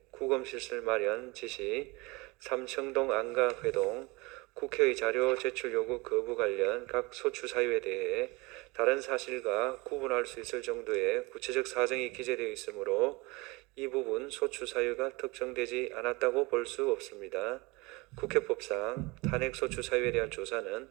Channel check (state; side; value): quieter; left; 24.7 dB